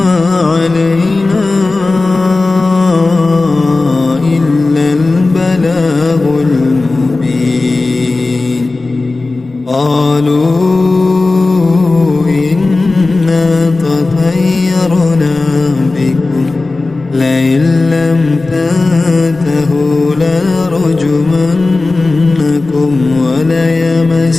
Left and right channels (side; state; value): right; quieter; 3.4 dB